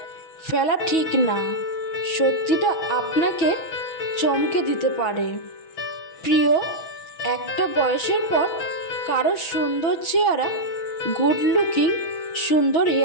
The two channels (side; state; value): right; late; 6.2 ms